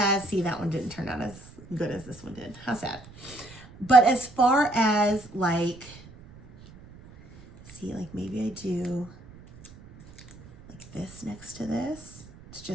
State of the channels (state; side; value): noise; right; rumble, 20 dB below the sound